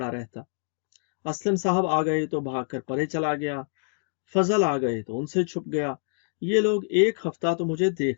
رہتا۔ اسلم صاحب آ گئے تو بھاگ کر پرے چلا گیا، فضل آ گئے تو ان سے چھپ گیا۔ یہ لوگ ایک ہفتہ تو مجھے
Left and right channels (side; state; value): right; silent; digital silence